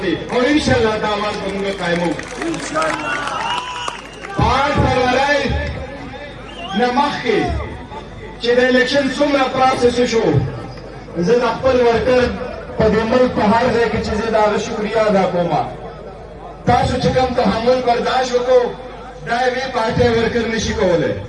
دی او انشاءالله دا آواز به موږ قایموو. 8 فروری نه مخکې چې د الیکشن څومره پروسس شو، زه د خپل ورکر په دې ملک په هر ځای کې چې زه د هغه شکریه ادا کوم. تاسو چې کوم تحمل برداشت وکړو دا یوې پارټۍ ورکر نشي کولی.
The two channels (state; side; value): identical; both; correlation 1.00